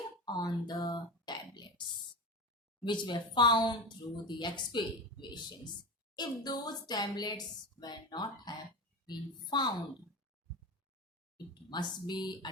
On the tablets which were found through the excavations. If those tablets were not have been found, it must be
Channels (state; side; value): normal; both; correlation 0.23